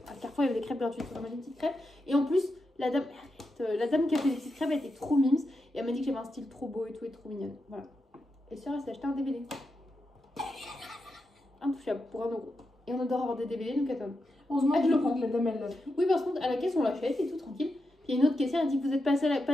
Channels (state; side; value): normal; both; correlation 0.87